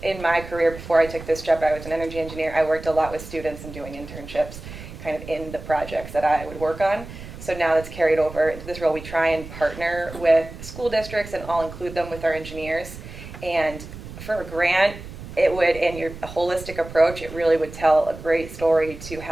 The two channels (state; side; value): noise; right; rumble, 13 dB below the sound